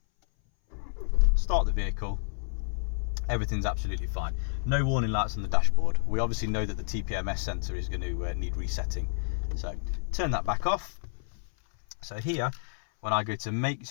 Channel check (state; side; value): silent; right; 58 dB below the other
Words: start the vehicle, everything's absolutely fine. No warning lights on the dashboard. We obviously know that the TPMS sensor is going to need resetting, so turn that back off. So here, when I go to make,